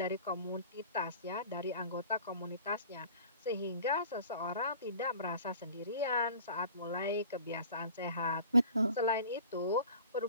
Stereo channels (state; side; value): inverted; both; correlation -0.45